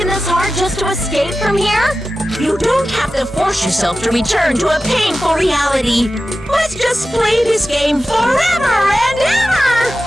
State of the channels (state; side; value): normal; both; correlation 0.94